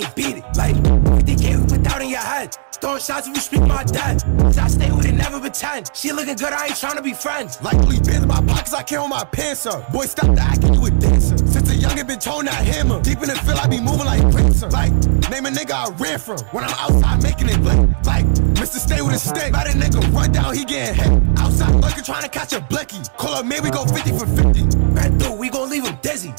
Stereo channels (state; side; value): silent; left; digital silence